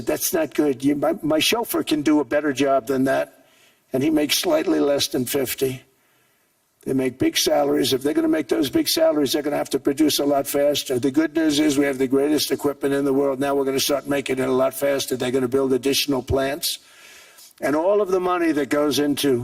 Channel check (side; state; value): both; identical; correlation 1.00